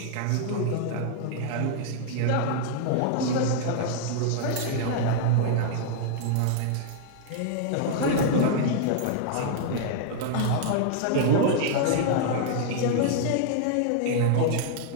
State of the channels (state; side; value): different; both; correlation -0.01